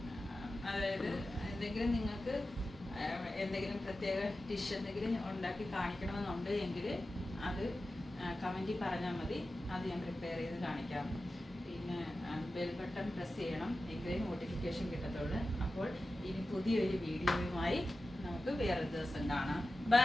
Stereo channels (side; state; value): both; normal; correlation 0.94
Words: അതായത് എന്തെങ്കിലും നിങ്ങൾക്ക് എന്തെങ്കിലും പ്രത്യേക ഡിഷ് എന്തെങ്കിലും ഉണ്ടാക്കി കാണിക്കണമെന്നുണ്ട് എങ്കിൽ അത് കമൻറ്റിൽ പറഞ്ഞാൽ മതി, അത് ഞാൻ പ്രിപ്പയർ ചെയ്ത് കാണിക്കാം. പിന്നെ ബെൽ ബട്ടൺ പ്രസ് ചെയ്യണം, എങ്കിലേ നോട്ടിഫിക്കേഷൻ കിട്ടത്തുള്ളൂ. അപ്പോൾ ഇനി പുതിയൊരു വീഡിയോയുമായി നമുക്ക് വേറൊരു ദിവസം കാണാം.